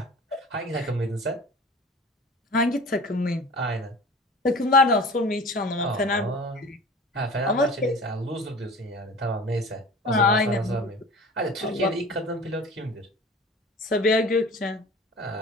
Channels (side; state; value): both; normal; correlation 0.40